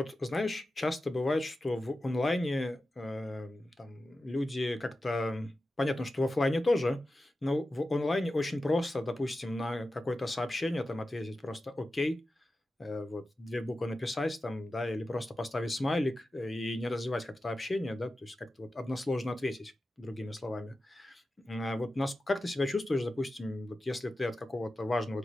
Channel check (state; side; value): normal; both; correlation 0.93